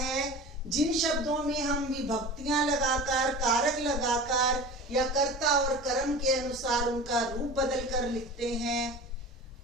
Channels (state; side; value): normal; both; correlation 0.35